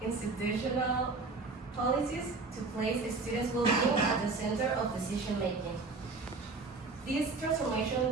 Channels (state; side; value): quieter; left; 3.9 dB